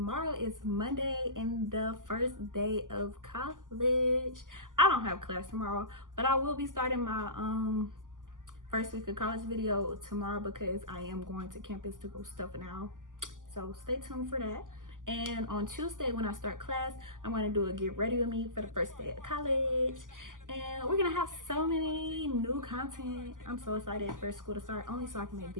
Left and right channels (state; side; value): late; left; 0.88 ms